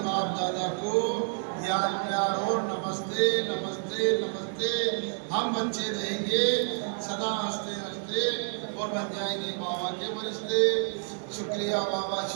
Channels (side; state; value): left; silent; 58 dB below the other